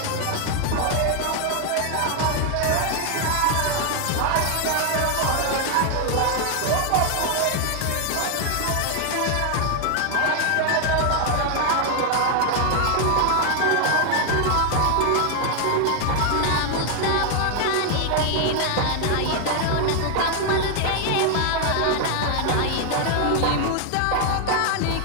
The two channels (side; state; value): both; different; correlation 0.00